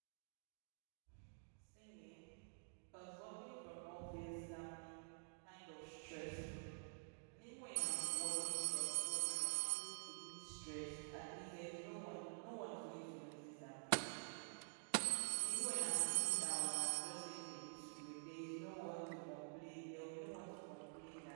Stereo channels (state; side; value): silent; left; digital silence